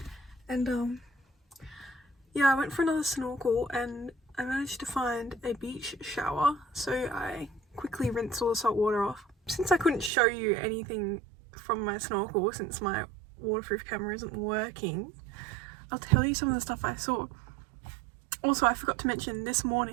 And yeah, I went for another snorkel and I managed to find a beach shower, so I quickly rinsed all the salt water off. Since I couldn't show you anything from my snorkel since my waterproof camera isn't working, I'll tell you some of the stuff I saw. Also, I forgot to mention, this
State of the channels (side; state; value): left; drops out; at 10.1 s